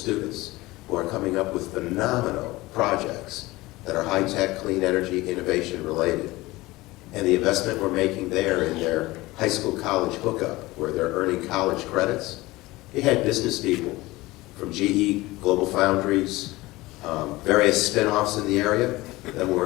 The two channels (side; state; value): right; quieter; 19.9 dB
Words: who are coming up with phenomenal projects that are high-tech, clean energy, innovation related. And the investment we're making there in their high school college hookup, where they're earning college credits, it had business people from GE, Global Foundries, various spin-offs in the area that